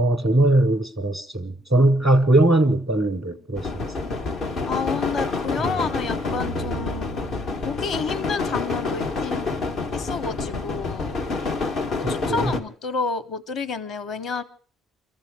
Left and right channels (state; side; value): normal; both; correlation 0.67